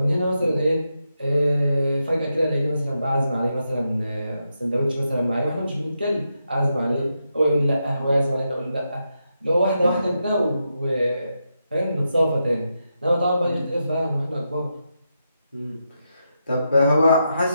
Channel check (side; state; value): both; inverted; correlation -0.85